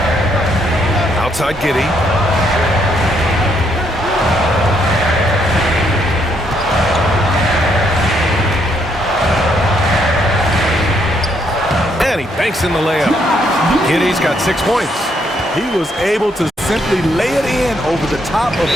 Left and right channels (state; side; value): normal; both; correlation 0.73